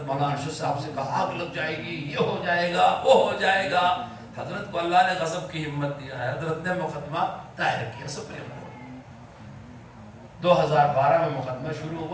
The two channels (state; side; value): identical; both; correlation 1.00